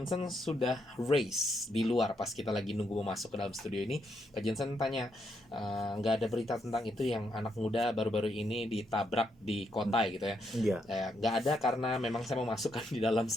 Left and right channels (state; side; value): normal; both; correlation 0.78